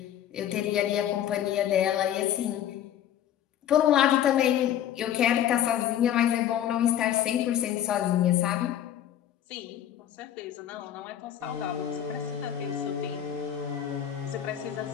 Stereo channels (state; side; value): quieter; right; 10.7 dB